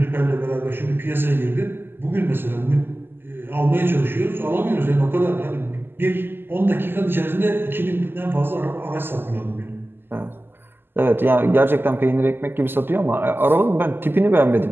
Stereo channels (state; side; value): late; left; 0.10 ms